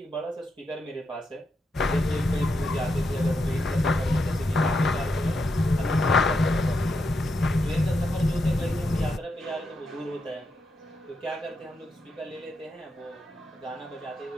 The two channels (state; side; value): normal; both; correlation 0.83